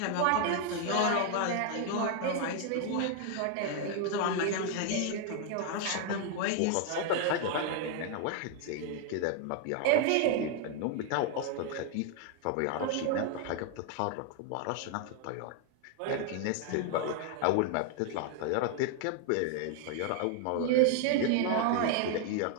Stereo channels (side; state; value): both; different; correlation 0.00